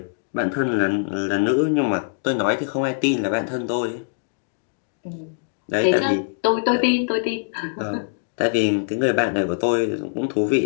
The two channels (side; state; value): right; silent; digital silence